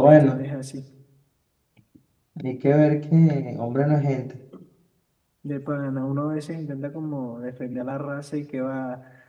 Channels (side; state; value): both; identical; correlation 1.00